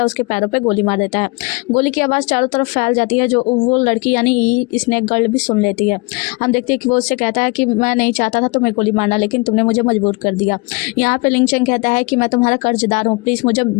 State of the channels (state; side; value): quieter; right; 28.1 dB